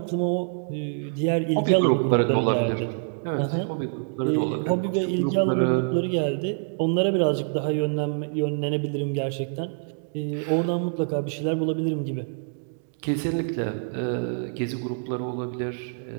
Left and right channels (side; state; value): left; silent; digital silence